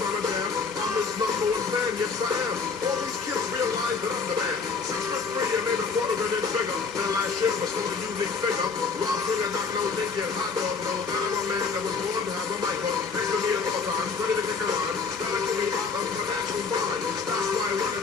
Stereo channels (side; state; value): right; quieter; 5.1 dB